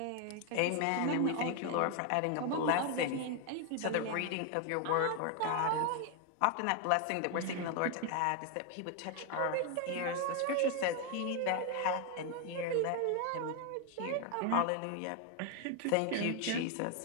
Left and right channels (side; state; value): both; different; correlation 0.01